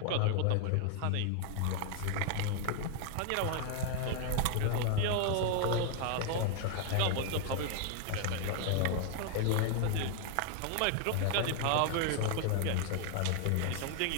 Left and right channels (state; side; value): different; both; correlation 0.00